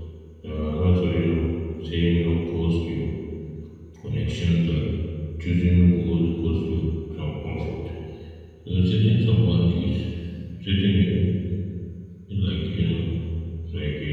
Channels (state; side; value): identical; both; correlation 1.00